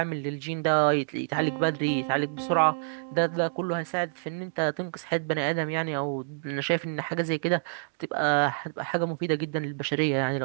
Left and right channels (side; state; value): left; silent; digital silence